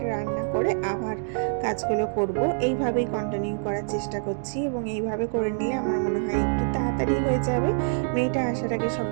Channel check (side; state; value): left; silent; digital silence